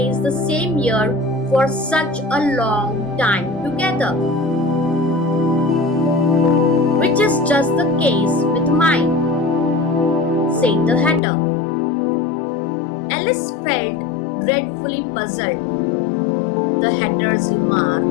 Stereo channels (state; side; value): drops out; right; at 11.2 s